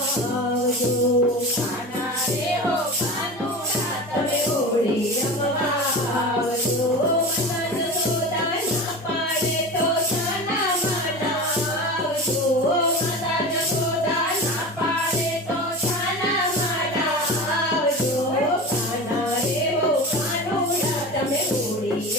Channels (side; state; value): both; normal; correlation 0.30